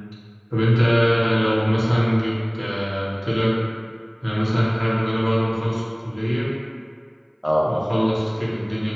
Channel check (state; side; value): identical; both; correlation 1.00